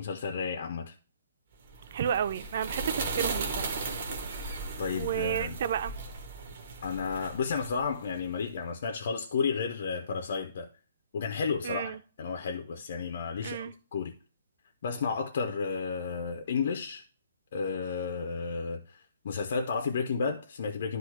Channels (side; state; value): both; inverted; correlation -0.60